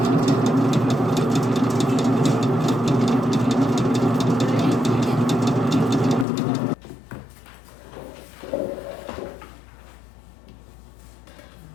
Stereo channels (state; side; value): drops out; right; at 6.2 s